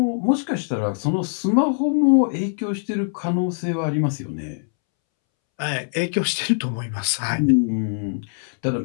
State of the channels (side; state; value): right; silent; 64 dB below the other